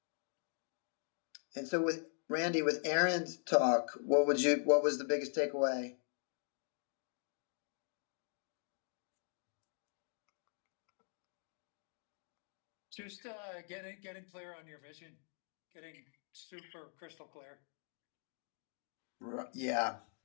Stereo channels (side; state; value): right; silent; 51 dB below the other